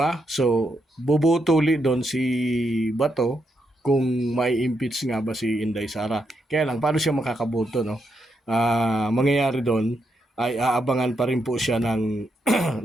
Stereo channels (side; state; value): both; normal; correlation 0.81